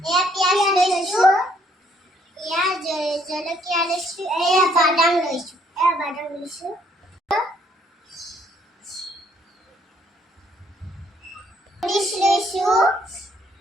এয়া পিঁয়াজ লৈছোঁ, এয়া জলকীয়া লৈছোঁ, এয়া বাদাম লৈছোঁ, লৈছোঁ,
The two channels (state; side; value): normal; both; correlation 0.66